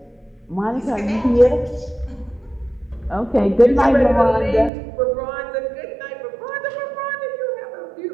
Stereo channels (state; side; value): drops out; left; at 4.7 s